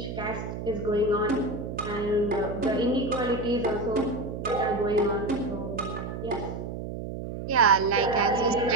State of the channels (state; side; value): noise; right; hum, 7 dB below the sound